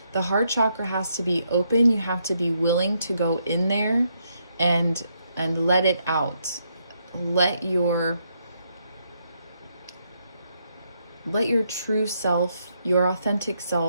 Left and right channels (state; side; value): inverted; both; correlation -0.77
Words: The heart chakra has to be open. You have to be willing to go in there and let it out. Let your true self, your authentic